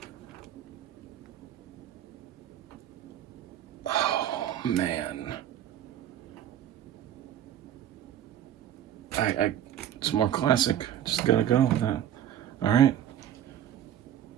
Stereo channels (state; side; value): quieter; left; 10.7 dB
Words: Oh man. It's more classic. Just gotta go with that. Alright.